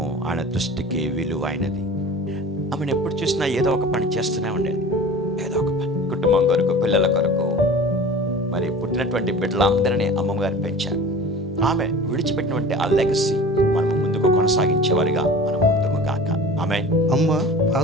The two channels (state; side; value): normal; both; correlation 0.39